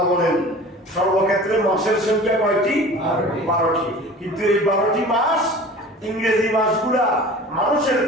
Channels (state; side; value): normal; both; correlation 0.41